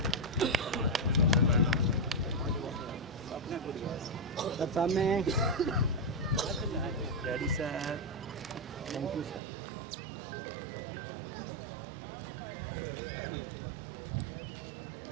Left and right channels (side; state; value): left; drops out; at 9.4 s